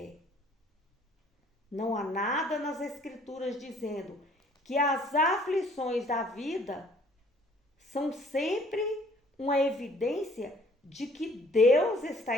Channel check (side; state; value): both; normal; correlation 0.58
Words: Não há nada nas Escrituras dizendo que as aflições da vida são sempre uma evidência de que Deus